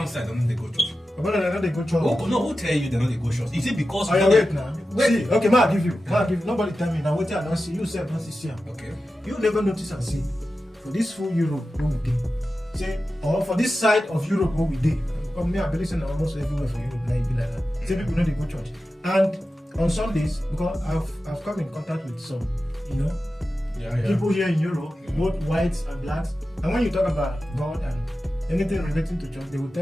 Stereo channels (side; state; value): both; normal; correlation 0.92